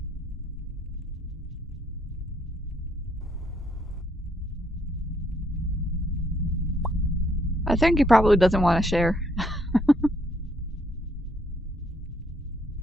I think he probably doesn't want to share.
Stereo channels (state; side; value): normal; both; correlation 0.70